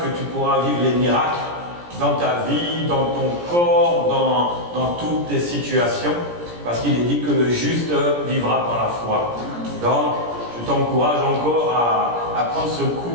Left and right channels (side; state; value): left; late; 17 ms